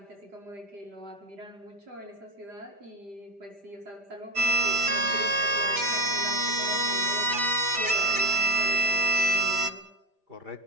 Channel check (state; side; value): late; left; 5.0 ms